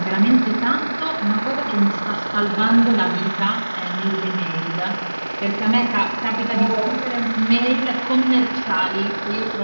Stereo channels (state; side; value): inverted; both; correlation -1.00